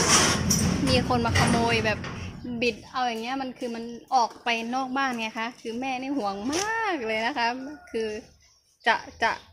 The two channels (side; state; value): both; identical; correlation 1.00